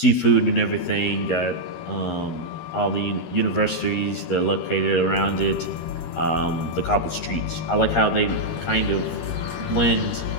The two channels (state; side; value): late; right; 13 ms